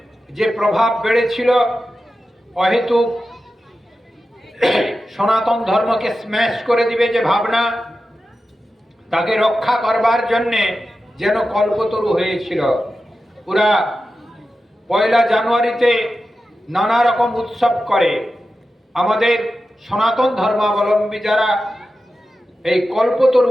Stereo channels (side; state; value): both; normal; correlation 0.92